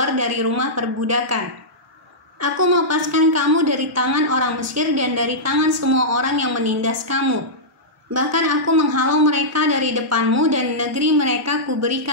dari rumah perbudakan. Aku melepaskan kamu dari tangan orang Mesir dan dari tangan semua orang yang menindas kamu. Bahkan aku menghalau mereka dari depanmu dan negeri mereka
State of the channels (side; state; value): both; normal; correlation -0.12